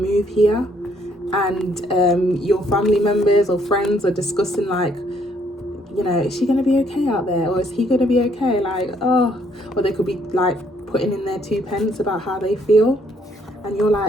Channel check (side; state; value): both; normal; correlation 0.68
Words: here, and your family members or friends are discussing like, you know, is she going to be okay out there, or is he going to be okay, like, oh, or they could be like putting in their 2 pence about how they feel, and you're